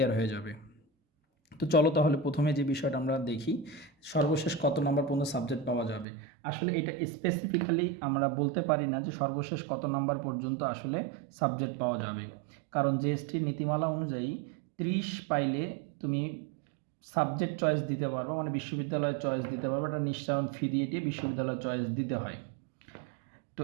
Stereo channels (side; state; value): left; drops out; at 6.1 s